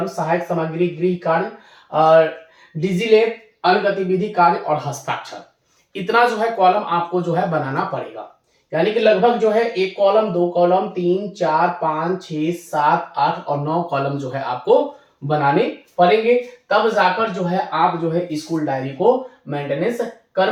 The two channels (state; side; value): identical; both; correlation 1.00